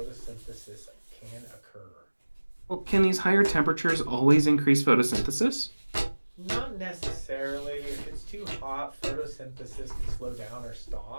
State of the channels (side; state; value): both; inverted; correlation -1.00